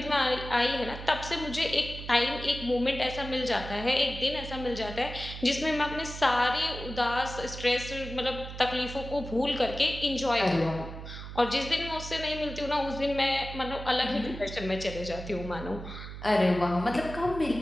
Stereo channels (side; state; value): right; noise; hum, 10 dB below the sound